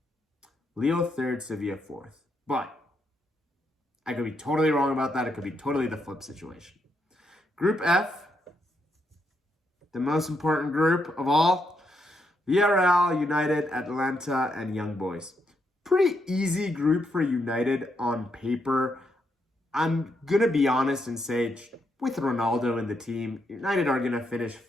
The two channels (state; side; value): normal; both; correlation 0.79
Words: Lille third, Sevilla fourth. But I could be totally wrong about that. It could be totally the flip situation. Group F. the most important group of all, Villarreal, United, Atlanta, and Young Boys. Pretty easy group for United on paper. I'm going to be honest and say, with Ronaldo in the team, United are going to finish